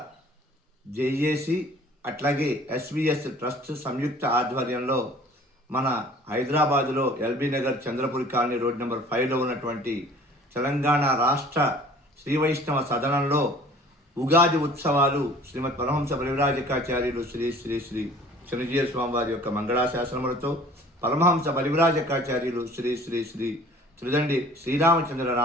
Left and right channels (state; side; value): normal; both; correlation 0.49